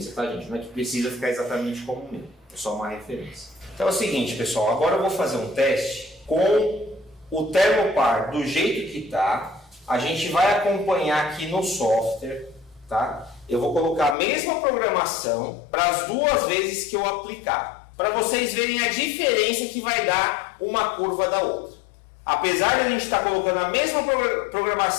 tá, gente? Não é que precisa ficar exatamente como o meu. É só uma referência. Então é o seguinte, pessoal. Agora eu vou fazer um teste com o Thermopar do jeito que tá. A gente vai acompanhar aqui no software, tá? Eu vou colocar a mesma programação para as duas vezes que eu aplicar, para vocês verem a diferença que vai dar uma curva da outra. Apesar de a gente estar colocando a mesma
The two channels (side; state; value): right; drops out; at 14.2 s